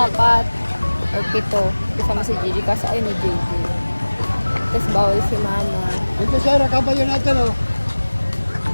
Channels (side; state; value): both; inverted; correlation -1.00